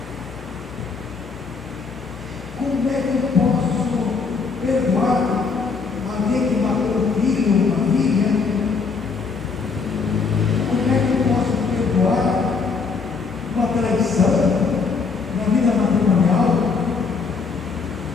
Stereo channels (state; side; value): quieter; right; 4.9 dB